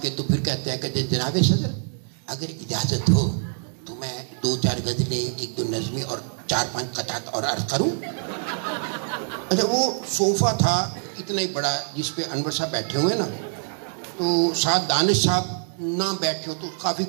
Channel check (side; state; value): left; silent; digital silence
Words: کے تو پھر کہتے ہیں کہ جناب صدر اگر اجازت ہو تو میں 2-4 غزلیں, 1-2 نظمیں اور 4-5 قطعات اور عرض کروں. اچھا, وہ صوفہ تھا اتنا ہی بڑا جس پہ انور صاحب بیٹھے ہوئے نا, تو ساتھ دانش صاحب نہ بیٹھے ہو تو کافی